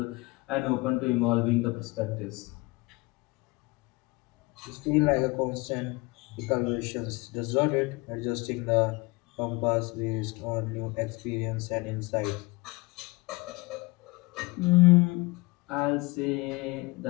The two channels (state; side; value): quieter; right; 24.2 dB